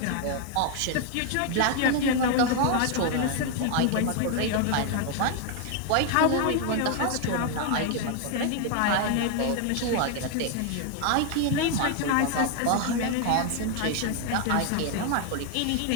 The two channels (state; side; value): different; both; correlation 0.01